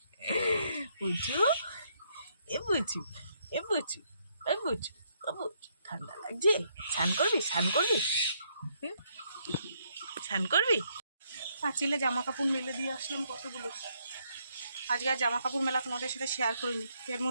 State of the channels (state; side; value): inverted; both; correlation -0.73